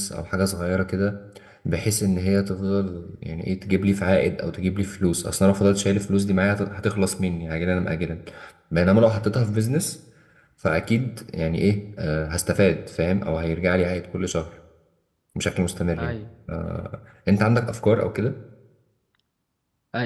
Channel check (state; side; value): identical; both; correlation 1.00